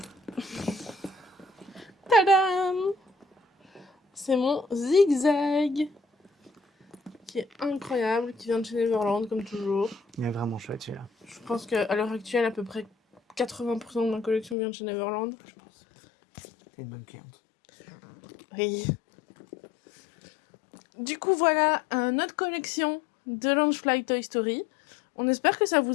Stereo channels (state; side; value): drops out; right; at 14.6 s